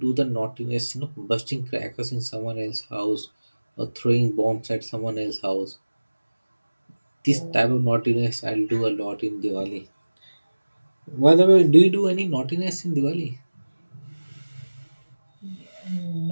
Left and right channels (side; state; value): both; inverted; correlation -1.00